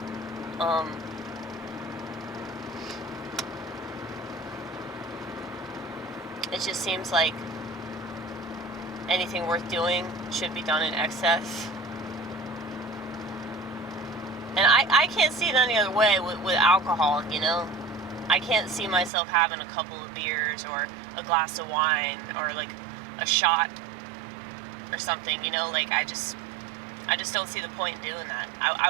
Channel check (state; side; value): drops out; left; at 19.1 s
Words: it just seems like anything worth doing should be done in excess. And I can't see it any other way with alcohol, you know? I can't see myself having a couple of beers or a glass of wine or like a shot or something, you know? Like I just don't see the point in doing that. I